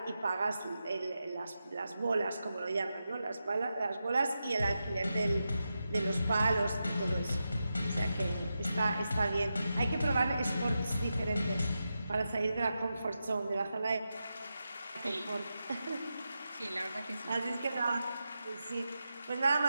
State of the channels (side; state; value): both; inverted; correlation -0.89